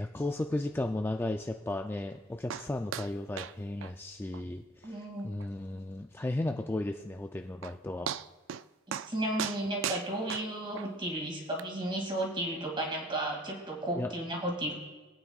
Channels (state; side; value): normal; both; correlation 0.56